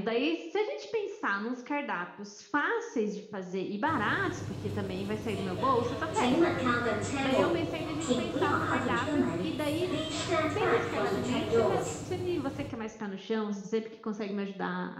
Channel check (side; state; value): both; identical; correlation 1.00